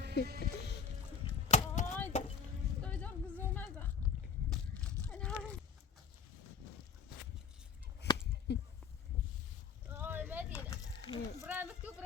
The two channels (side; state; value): right; quieter; 6.3 dB